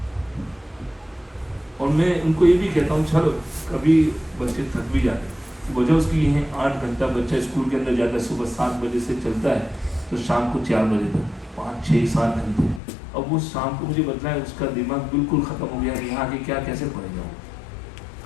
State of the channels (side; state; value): right; drops out; at 12.8 s